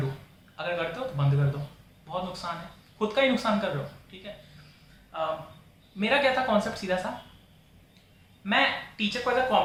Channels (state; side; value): identical; both; correlation 1.00